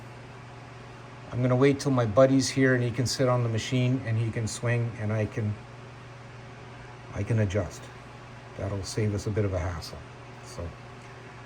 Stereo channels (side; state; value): both; identical; correlation 1.00